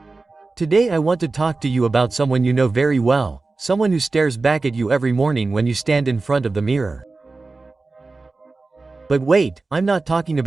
Today I want to talk to you about someone you know very well, someone who stares back at you every morning when you stand in front of the mirror. But wait, I'm not talking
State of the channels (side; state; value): left; quieter; 3.6 dB